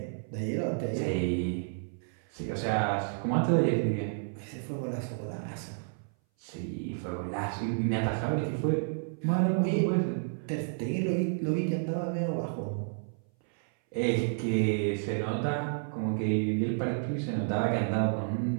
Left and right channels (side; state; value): left; silent; 57 dB below the other